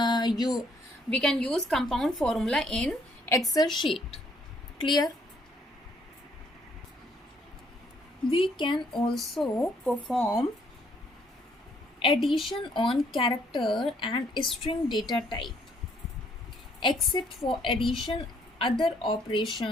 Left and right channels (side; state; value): both; normal; correlation 0.67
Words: compound formula in Excel sheet. Clear? We can also perform addition on character and string data type. Except for addition, other